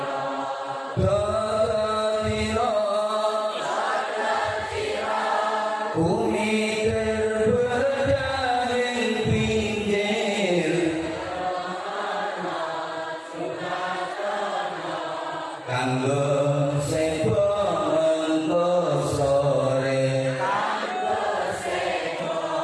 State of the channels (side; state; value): both; identical; correlation 1.00